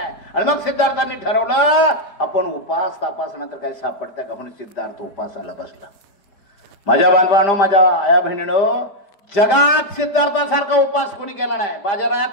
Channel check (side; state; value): right; late; 5.0 ms